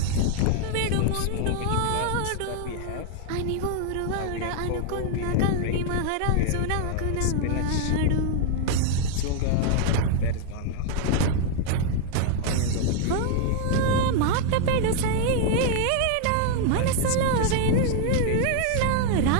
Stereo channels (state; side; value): different; both; correlation 0.00